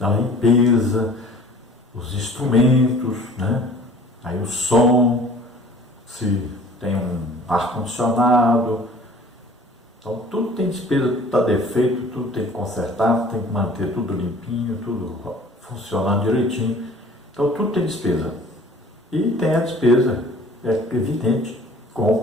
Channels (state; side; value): normal; both; correlation 0.49